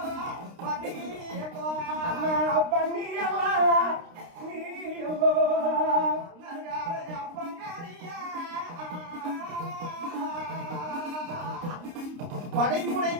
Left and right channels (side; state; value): left; late; 29 ms